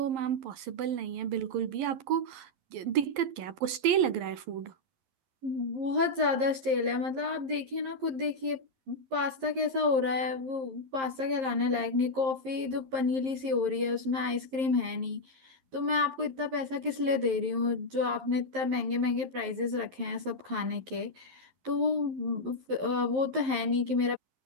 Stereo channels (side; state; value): left; late; 11 ms